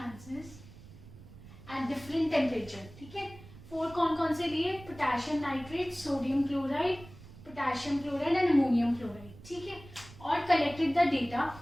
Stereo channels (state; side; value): noise; right; rumble, 18 dB below the sound